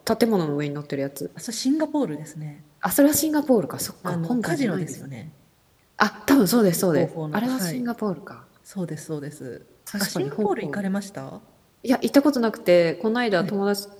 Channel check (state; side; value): identical; both; correlation 1.00